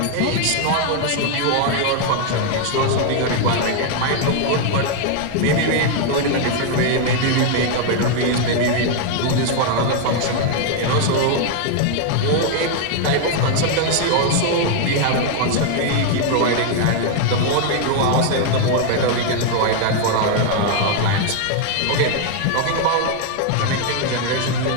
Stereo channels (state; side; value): different; both; correlation 0.00